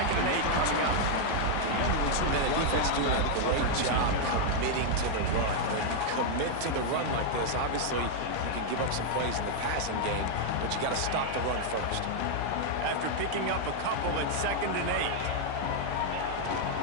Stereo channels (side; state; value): both; different; correlation 0.00